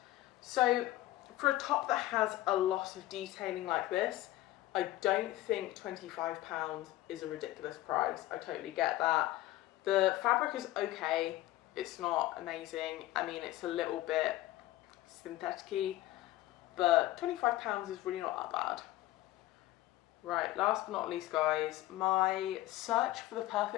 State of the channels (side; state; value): right; quieter; 16.0 dB